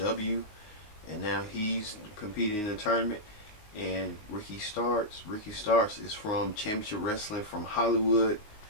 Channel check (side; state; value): right; late; 19 ms